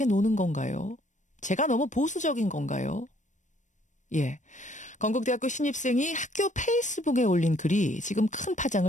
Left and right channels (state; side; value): late; right; 0.35 ms